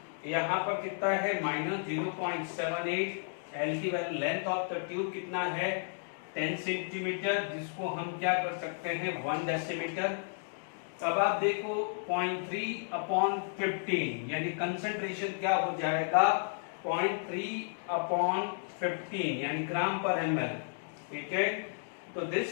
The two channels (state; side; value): silent; right; digital silence